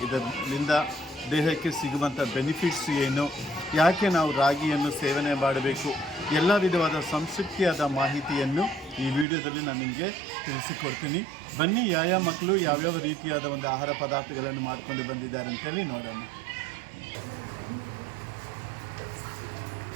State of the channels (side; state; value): left; drops out; at 9.2 s